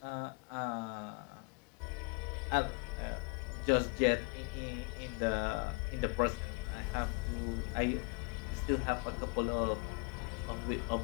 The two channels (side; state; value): right; quieter; 30.0 dB